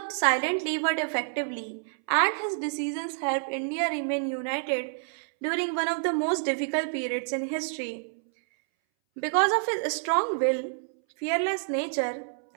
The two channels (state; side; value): silent; left; 59 dB below the other